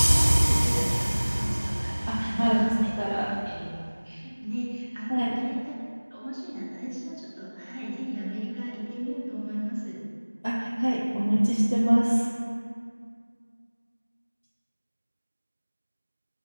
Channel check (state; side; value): inverted; both; correlation -1.00